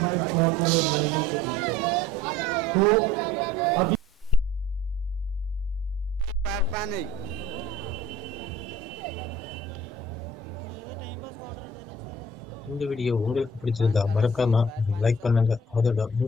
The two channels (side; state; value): both; normal; correlation 0.50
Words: இந்த வீடியோ உங்களுக்கு பிடிச்சிருந்தா மறக்காம லைக் பண்ணுங்க. அதோட